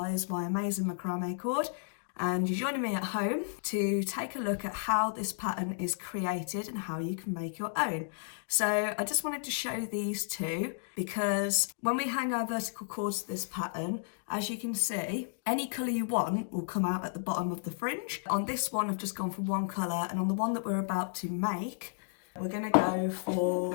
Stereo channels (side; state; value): right; silent; digital silence